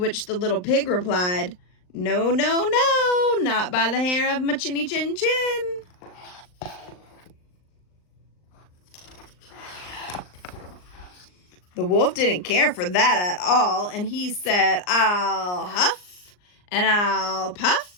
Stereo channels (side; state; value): right; late; 39 ms